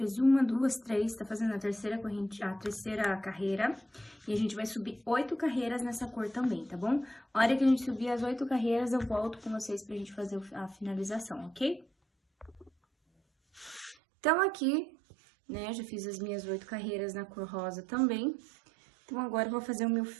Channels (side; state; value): left; drops out; at 14.0 s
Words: 1, 2, 3, tá fazendo a terceira corrente, a terceira carreira. E a gente vai subir 8 carreiras nessa cor também, tá bom? A hora que a gente subir as 8 carreiras, eu volto com vocês pra gente fazer a finalização, ok? Então, aqui, né, já fiz as minhas 8 carreiras na cor rosa também. Então, agora eu vou fazer o meu